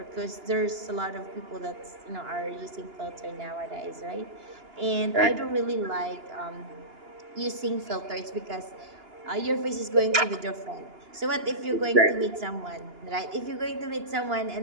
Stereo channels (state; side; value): late; left; 2.9 ms